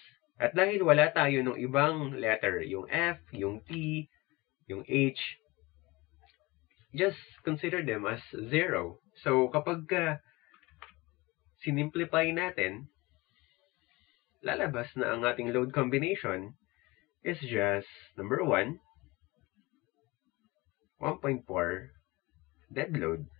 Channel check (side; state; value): right; quieter; 22.6 dB